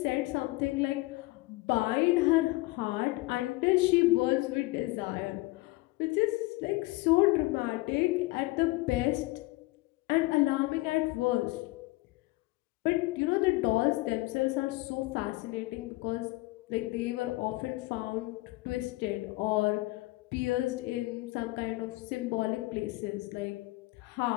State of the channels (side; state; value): right; quieter; 21.4 dB